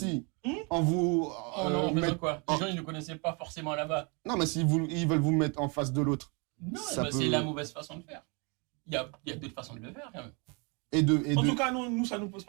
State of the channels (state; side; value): quieter; left; 32.9 dB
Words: En vous. Quoi? Les gens, ils ne connaissaient pas forcément là-bas. Non, mais s'ils veulent vous mettre en face de l'autre. Non, c'est la mauvaise façon de faire. Il y a d'autres façons de le faire, quand même. En tout cas, nous, ça ne nous pose